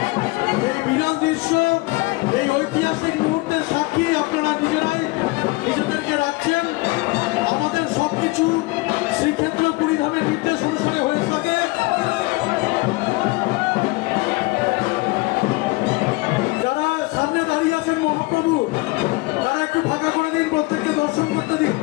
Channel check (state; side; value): quieter; right; 23.4 dB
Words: এই বিরল দৃশ্য, এই ঐতিহাসিক মুহূর্তের সাক্ষী আপনারা নিজেরাই নিজেদেরকে রাখছেন। আমাদের সবকিছু শ্রীক্ষেত্র পুরীধামের নির্দেশ অনুসারে হয়ে থাকে। যারা সামনে দাঁড়িয়ে আছেন মহাপ্রভু, তারা একটু ফাঁকা করে দিন, প্রত্যেককে দর্শন করতে দিন।